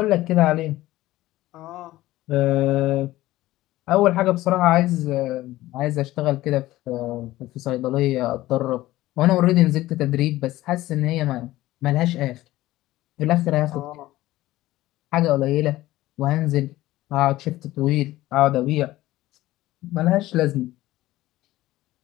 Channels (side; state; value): right; quieter; 16.5 dB